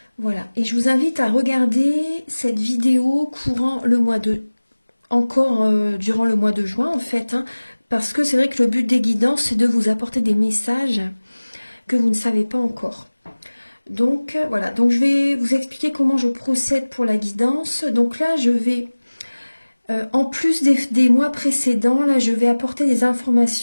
Voilà, et je vous invite à regarder cette vidéo courant le mois de... encore durant le mois de juin en fait, hein, parce que c'est vrai que le but des guidances, c'est de vous apporter des messages que vous ne savez pas encore. Donc voilà, donc je vais vous expliquer comment je procède pour la guidance. Donc là, je vais... en plus des mois précédents, là, je vais apporter des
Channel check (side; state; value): both; inverted; correlation -1.00